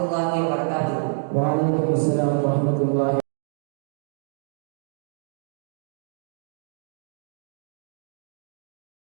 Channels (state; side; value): silent; left; digital silence